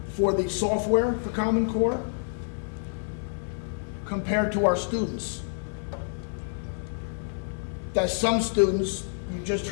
for the software for Common Core compared to our students. That some students, you just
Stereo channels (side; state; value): right; silent; digital silence